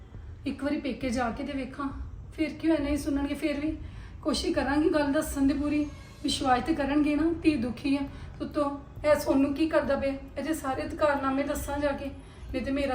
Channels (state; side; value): identical; both; correlation 1.00